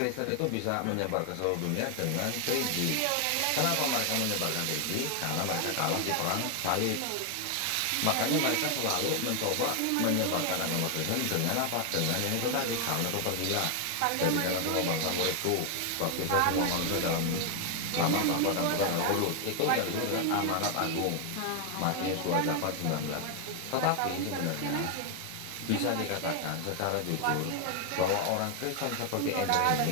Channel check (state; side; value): different; both; correlation 0.00